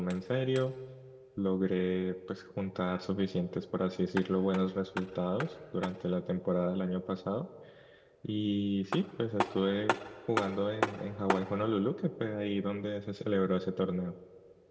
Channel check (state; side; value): identical; both; correlation 1.00